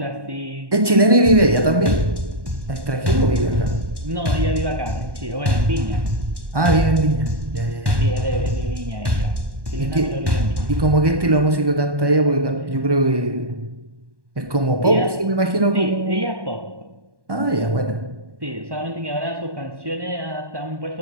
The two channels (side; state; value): left; late; 1.1 ms